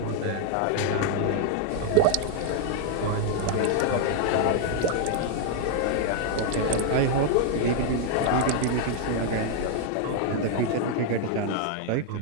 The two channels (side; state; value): both; different; correlation 0.00